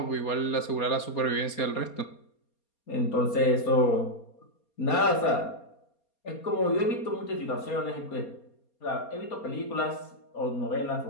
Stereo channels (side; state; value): right; late; 4.3 ms